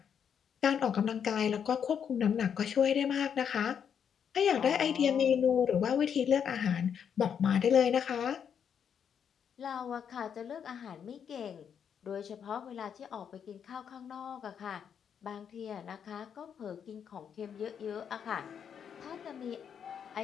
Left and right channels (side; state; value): right; quieter; 7.8 dB